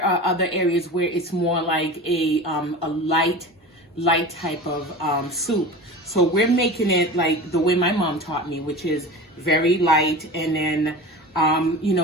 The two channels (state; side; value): normal; both; correlation 0.33